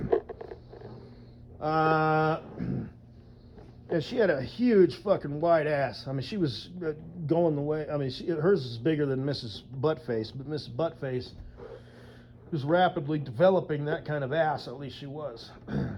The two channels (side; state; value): both; identical; correlation 1.00